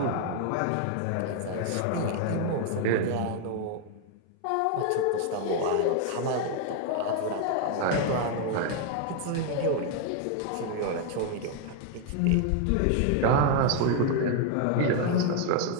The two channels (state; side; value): different; both; correlation 0.00